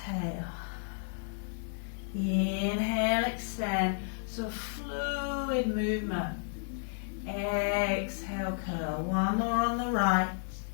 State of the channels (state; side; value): silent; right; 56 dB below the other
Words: Inhale, extend, so fluid movement. Exhale, curl. One more on the right.